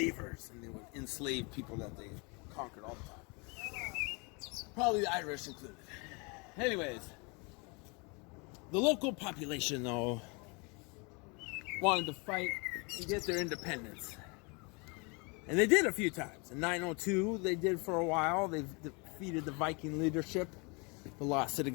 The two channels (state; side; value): quieter; right; 30.9 dB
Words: and they would enslave people that they conquered all the time. Probably the Irish included. Anyways, the local population, though, wanted to fight and get their independence. And they did a few times. In 902, they did for a while. They defeated the Viking leadership, but lost it